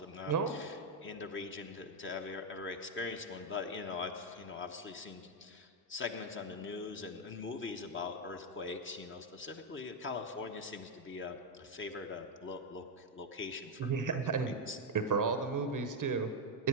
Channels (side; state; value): both; normal; correlation 0.02